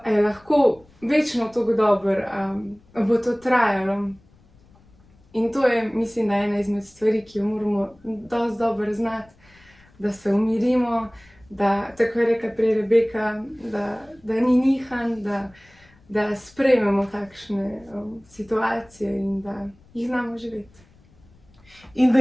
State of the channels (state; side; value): noise; left; rumble, 29 dB below the sound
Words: lahko večno tako dobro, a bo to trajalo. In to je, mislim, da ena izmed stvari, ki jo moramo dosti dobro znati, da se umirimo, da, tako je rekla prej Rebeka, da ni nihanj, da sprejmemo takšne situacije in da jih znamo živeti. In da